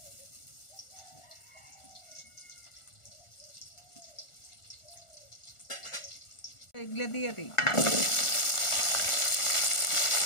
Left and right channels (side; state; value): right; late; 1.4 ms